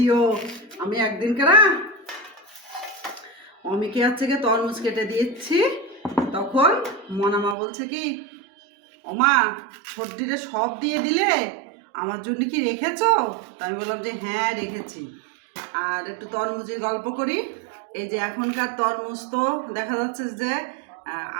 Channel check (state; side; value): drops out; left; at 7.6 s